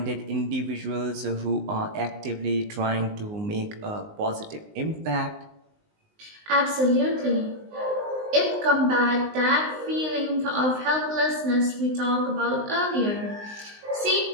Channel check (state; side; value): late; left; 19 ms